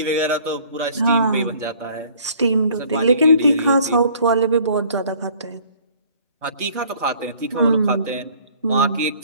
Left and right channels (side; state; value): both; inverted; correlation -0.55